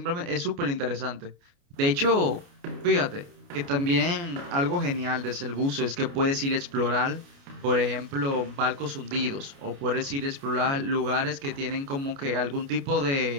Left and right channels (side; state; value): left; late; 29 ms